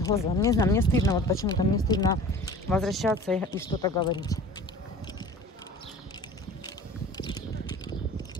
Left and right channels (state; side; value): normal; both; correlation 0.42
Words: Не знаю, мне стыдно, вот почему-то мне стыдно возвращаться и что-то говорить.